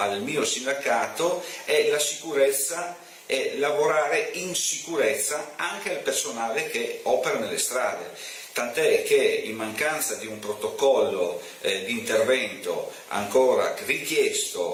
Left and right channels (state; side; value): identical; both; correlation 1.00